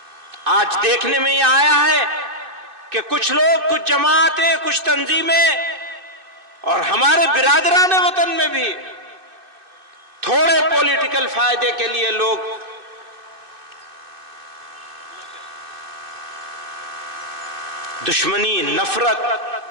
आज देखने में यह आया है कि कुछ लोग, कुछ जमातें, कुछ तंजीमें और हमारे बिरादरान वतन में भी थोड़े पॉलिटिकल फायदे के लिए लोग दुश्मनी, नफरत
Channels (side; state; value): left; late; 2.6 ms